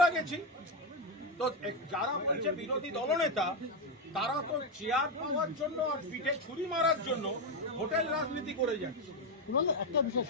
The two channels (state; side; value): normal; both; correlation 0.07